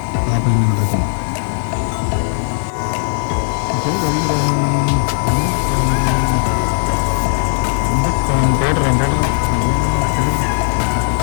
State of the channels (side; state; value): right; silent; digital silence